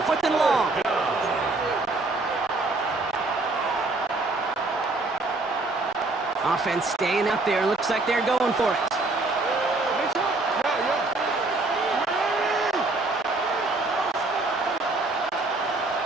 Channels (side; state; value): left; quieter; 3.2 dB